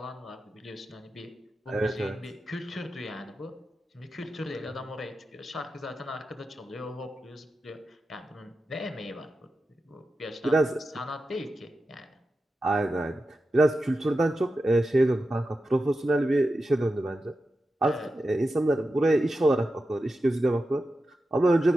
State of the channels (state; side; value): normal; both; correlation 0.91